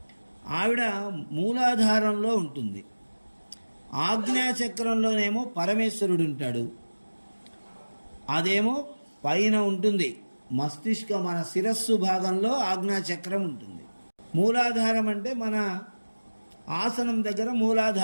ఆవిడ మూలాధారంలో ఉంటుంది. ఆజ్ఞాచక్రంలోనేమో పరమేశ్వరుడు ఉంటాడు. అదేమో పైన ఉంటుంది, మన శిరస్సు భాగంలో ఆజ్ఞాచక్రం ఉంటుంది. మూలాధారం అంటే మన ఆసనం దగ్గర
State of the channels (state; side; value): inverted; both; correlation -1.00